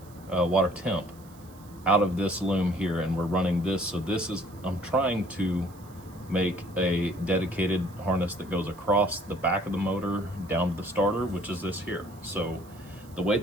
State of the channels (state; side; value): noise; right; hiss, 26 dB below the sound